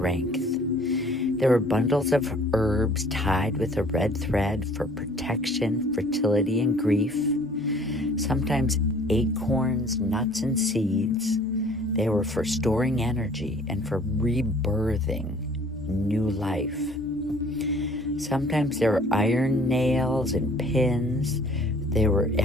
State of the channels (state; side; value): normal; both; correlation 0.54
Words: There were bundles of herbs tied with a red thread for protection, fertility, and grief. Sometimes acorns, nuts, and seeds. They were for storing energy and for rebirthing new life. Sometimes there were iron nails and pins. They were